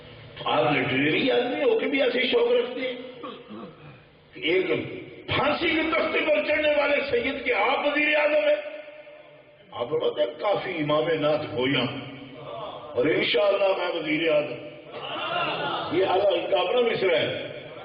آپ لٹریری آدمی ہو کے بھی ایسے شوق رکھتے ہیں؟ ایک پھانسی کے تختے پر چڑھنے والے سید کے آپ وزیر اعظم ہیں. آپ بتاتے ہیں کافی امام نعت گویا اور انشاءاللہ میں وزیر اعظم. یہ ان کا اپنا مصرع ہے،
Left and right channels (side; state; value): both; identical; correlation 1.00